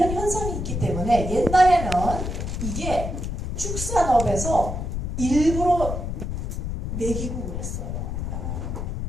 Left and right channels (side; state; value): left; noise; rumble, 3 dB below the sound